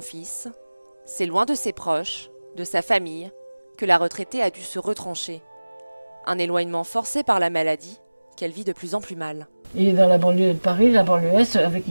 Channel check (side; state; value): both; inverted; correlation -1.00